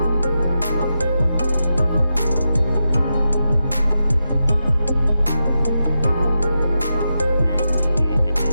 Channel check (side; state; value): both; inverted; correlation -0.88